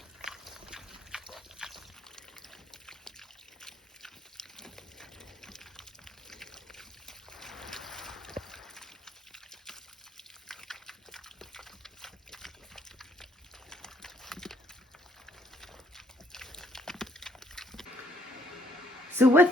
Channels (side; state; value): both; normal; correlation 0.69